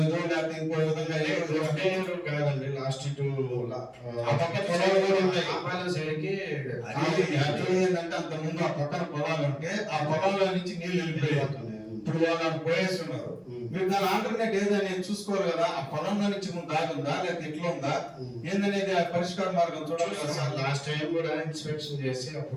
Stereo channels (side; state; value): both; identical; correlation 1.00